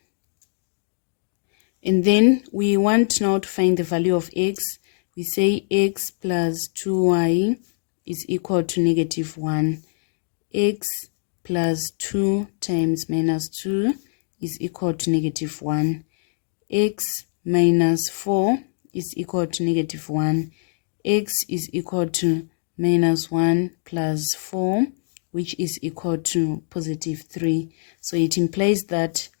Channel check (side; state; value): right; silent; digital silence